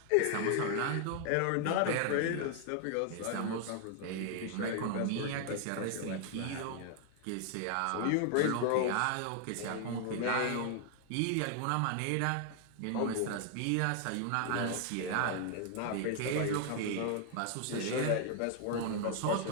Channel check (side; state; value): both; different; correlation 0.00